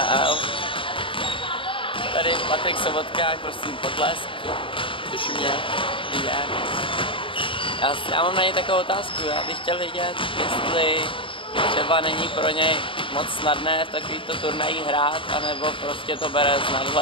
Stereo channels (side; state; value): right; late; 0.25 ms